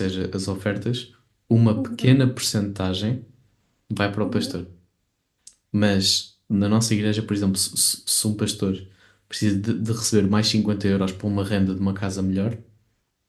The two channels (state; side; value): identical; both; correlation 1.00